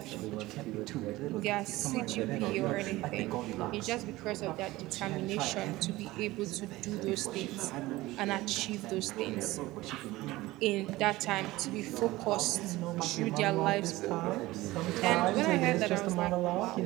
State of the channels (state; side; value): quieter; left; 18.6 dB